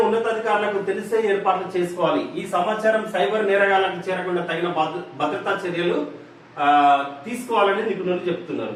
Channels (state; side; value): identical; both; correlation 1.00